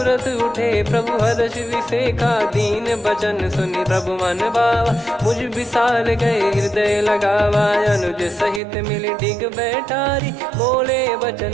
उठे प्रभु हर्ष विसेखा, दीन बचन सुनि प्रभु मन भावा, मुझ विशाल गए हृदय लगावा, अनुज सहित मिल डिग बैठारी, बोले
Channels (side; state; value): left; drops out; at 8.6 s